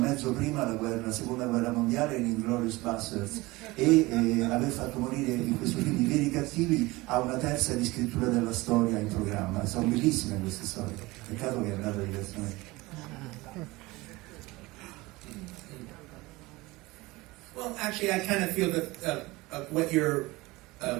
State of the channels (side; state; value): left; quieter; 21.4 dB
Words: prima la seconda guerra mondiale in Inglourious Basterds e aver fatto morire in questo film i veri cattivi, ha una terza di scrittura della storia in programma. Sono bellissime queste storie, peccato che è andata diversamente. Well, actually, I kind of feel that what you're